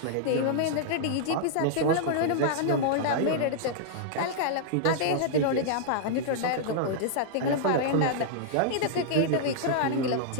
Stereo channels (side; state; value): both; different; correlation -0.02